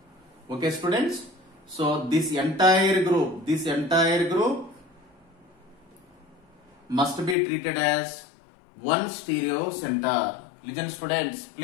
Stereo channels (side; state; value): right; drops out; at 7.4 s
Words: Okay, students. So this entire group must be treated as one stereo center. Listen, students,